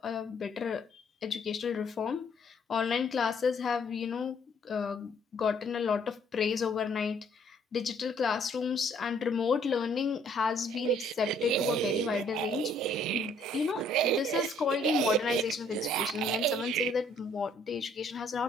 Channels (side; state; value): both; normal; correlation 0.63